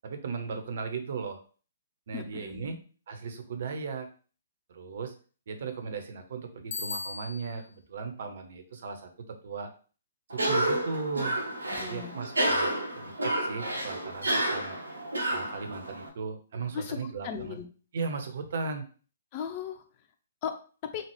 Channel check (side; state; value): both; inverted; correlation -0.68